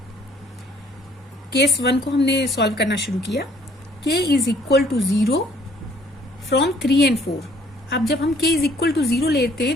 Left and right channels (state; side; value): normal; both; correlation 0.60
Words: केस 1 को हमने सॉल्व करना शुरू किया. k is equal to 0 from 3 and 4. अब जब हम k इज इक्वल टू 0 लेते